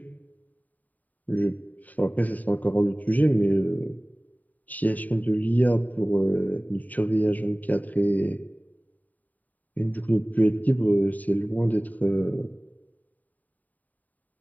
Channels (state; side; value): late; right; 0.078 ms